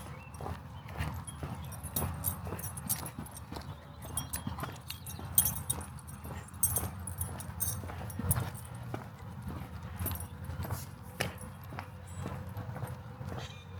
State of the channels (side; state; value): both; identical; correlation 1.00